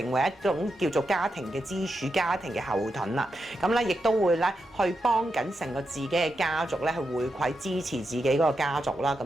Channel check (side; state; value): both; normal; correlation 0.86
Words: 為一種叫做家庭嘅支柱、家庭嘅後盾啦。咁咧亦都會咧去幫緊成個自己嘅家族咧去回饋支持自己嗰個家族啦。